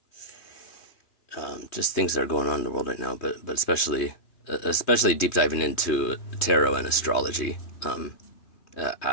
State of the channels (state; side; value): late; right; 3.1 ms